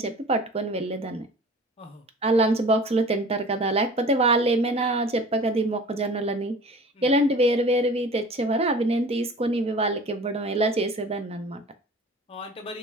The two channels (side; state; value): both; normal; correlation 0.43